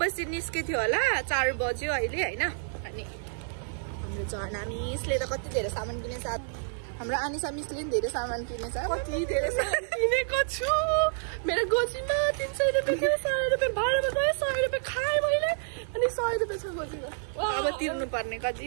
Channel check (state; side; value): silent; left; 59 dB below the other